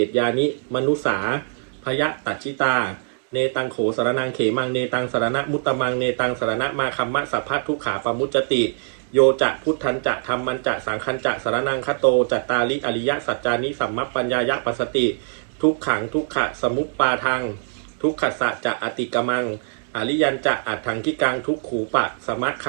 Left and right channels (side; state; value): left; silent; digital silence